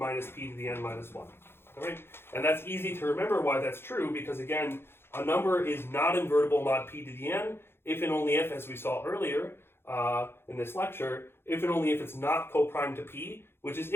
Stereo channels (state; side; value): late; right; 0.11 ms